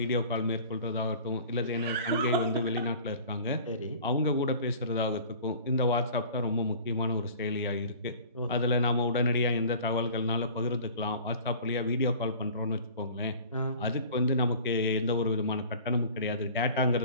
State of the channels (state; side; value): inverted; both; correlation -0.44